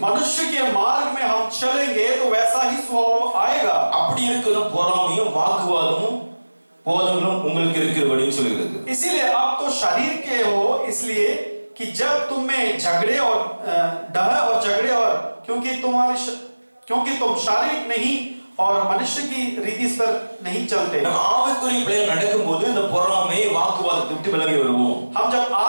मनुष्य के मार्ग में हम चलेंगे तो वैसा ही स्वभाव आएगा। அப்படி இருக்கிற பொறாமையும் வாக்குவாதமும் போதங்களும் உங்களுக்கு இருக்கிறபடின்னு சொல்லுகிறது. इसीलिए आप तो शरीर के हो, इसलिए कि जब तुम में झगड़े और डह और झगड़े और क्योंकि तुम शारीरिक नहीं और मनुष्य की रीति पर नहीं चलते। ஆவிக்குரிய பிள்ளைகள் நடக்கும்போது இந்த பொறாமை வாக்குவாதத்தை விட்டு விலகி வருவோம். हम जब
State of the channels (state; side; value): inverted; both; correlation -1.00